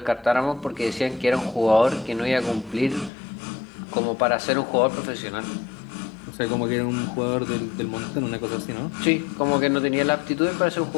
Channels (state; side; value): drops out; right; at 3.1 s